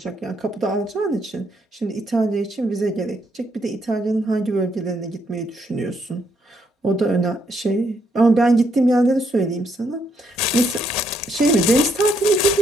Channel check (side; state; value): both; normal; correlation 0.74